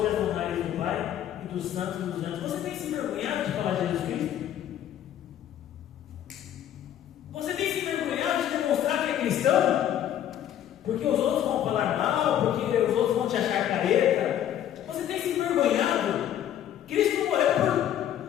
as honrarias do Pai e dos santos e dos anjos. Você tem se envergonhado de falar de Jesus Cristo? Você tem se envergonhado de demonstrar que é cristão? Porque os outros vão falar mal, porque os outros vão te achar careta. Você tem se envergonhado? Cristo morreu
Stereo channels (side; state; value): right; quieter; 10.9 dB